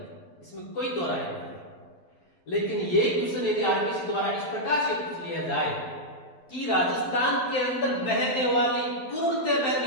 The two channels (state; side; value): late; right; 12 ms